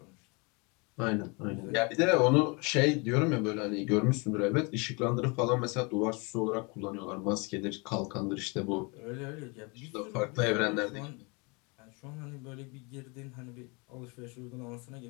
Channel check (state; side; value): quieter; right; 30.1 dB